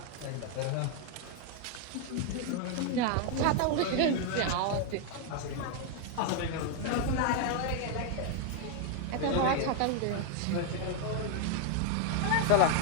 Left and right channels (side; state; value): both; different; correlation 0.01